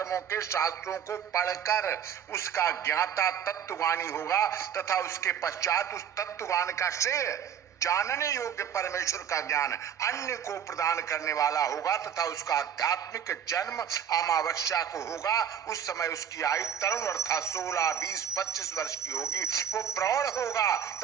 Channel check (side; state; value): left; quieter; 8.7 dB